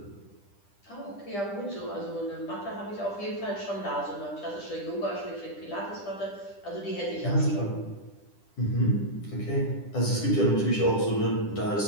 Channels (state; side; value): late; right; 10 ms